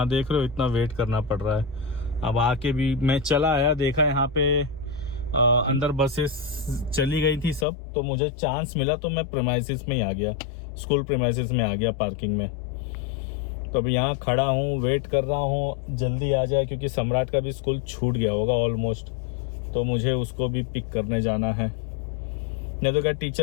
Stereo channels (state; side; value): drops out; right; at 7.7 s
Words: देख रहे हो इतना वेट करना पड़ रहा है। अब आके भी मैं चला आया, देखा यहाँ पे अंदर बसेस चली गई थी सब, तो मुझे चांस मिला तो मैं प्रीमाइसिस में ही आ गया, स्कूल प्रीमाइसिस में आ गया पार्किंग में। तो अभी यहाँ खड़ा हूँ, वेट कर रहा हूँ जल्दी आ जाए, क्योंकि सम्राट का भी स्कूल छूट गया होगा ऑलमोस्ट, तो मुझे उसको भी पिक करने जाना है। नहीं तो क्या